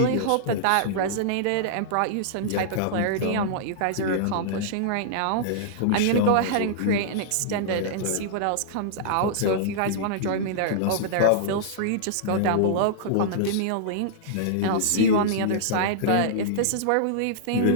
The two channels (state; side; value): different; both; correlation -0.02